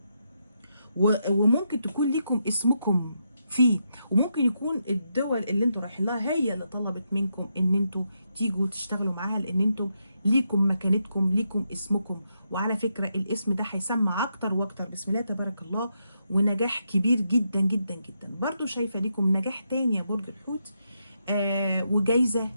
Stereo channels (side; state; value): both; inverted; correlation -0.82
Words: وممكن تكون ليكم اسمكم فيه، وممكن يكون الدول اللي انتوا رايحين لها هي اللي طلبت منكم ان انتوا تيجوا تشتغلوا معاها، لان انتوا ليكم مكانتكم، ليكم اسمكم. وعلى فكره الاسم ده هيسمع اكتر واكتر بسم الله تبارك الله، ونجاح كبير جدا جدا جدا. برضو شايفه ليكم نجاح تاني يا برج الحوت، وجايزه